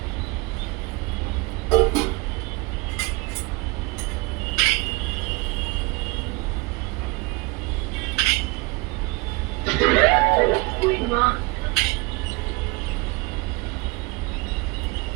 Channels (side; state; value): left; quieter; 25.6 dB